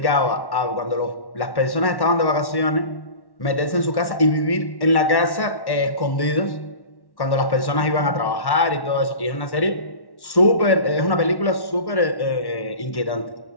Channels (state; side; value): late; right; 1.1 ms